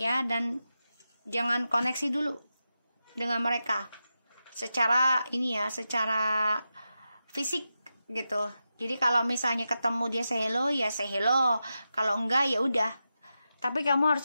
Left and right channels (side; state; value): both; inverted; correlation -0.90